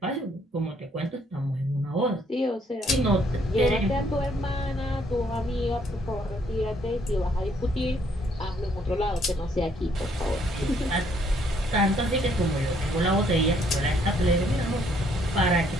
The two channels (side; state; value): both; normal; correlation 0.67